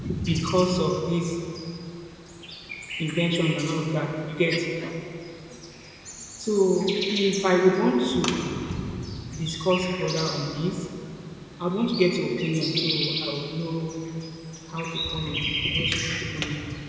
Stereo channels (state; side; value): identical; both; correlation 1.00